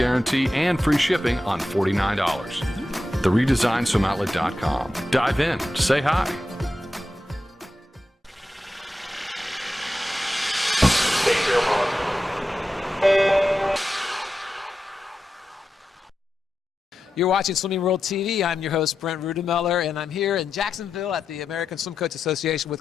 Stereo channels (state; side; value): normal; both; correlation 0.90